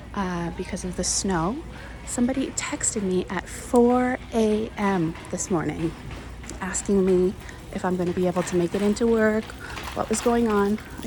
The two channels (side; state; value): both; identical; correlation 1.00